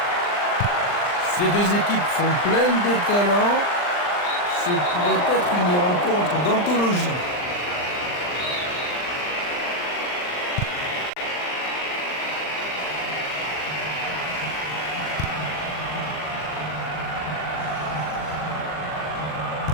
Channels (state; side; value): late; right; 39 ms